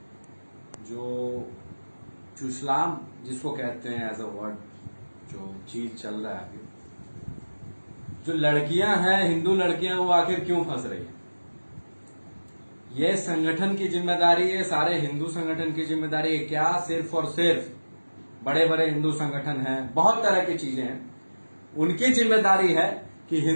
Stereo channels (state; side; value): inverted; both; correlation -1.00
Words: जो इस्लाम जिसको कहते हैं एज अ वर्ड, जो चीज चल रहा है अभी, जो लड़कियां हैं, हिंदू लड़कियां, वो आखिर क्यों फंस रही हैं? ये संगठन की जिम्मेदारी है, सारे हिंदू संगठन की जिम्मेदारी है क्या? सिर्फ और सिर्फ बड़े बड़े हिंदू संगठन हैं, बहुत तरह की चीजें हैं, उनकी जिम्मेदारी है कि